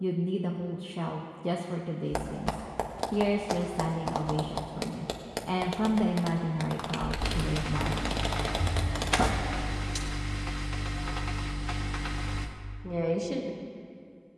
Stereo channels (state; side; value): identical; both; correlation 1.00